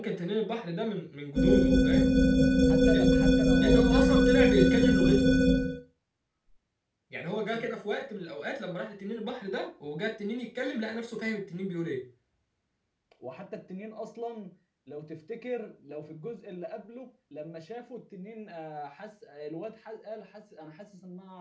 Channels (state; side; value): identical; both; correlation 1.00